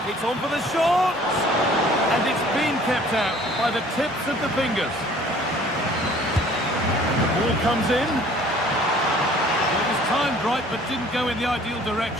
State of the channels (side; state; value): both; normal; correlation 0.53